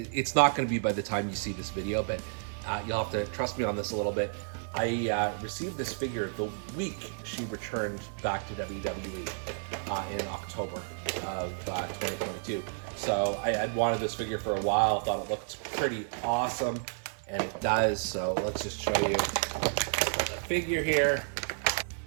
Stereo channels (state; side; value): silent; left; 57 dB below the other